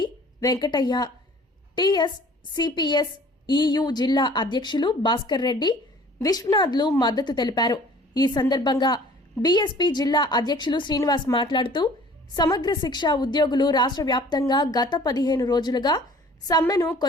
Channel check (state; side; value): normal; both; correlation 0.50